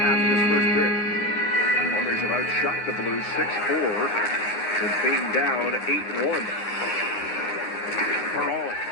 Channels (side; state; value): right; late; 9.6 ms